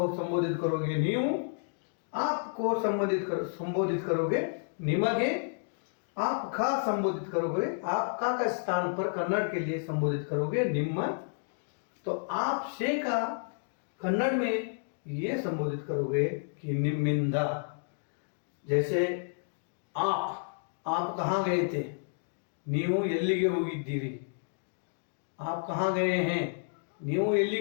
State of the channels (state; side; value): silent; right; digital silence